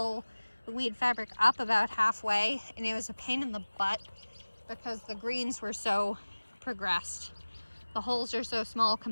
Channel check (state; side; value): inverted; both; correlation -1.00